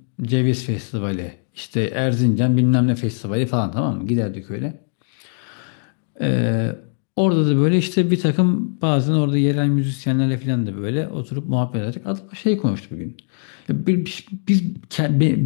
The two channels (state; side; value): silent; right; digital silence